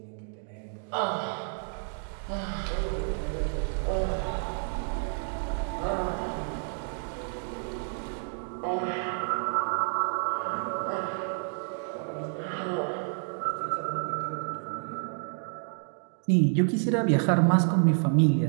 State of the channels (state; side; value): silent; left; 58 dB below the other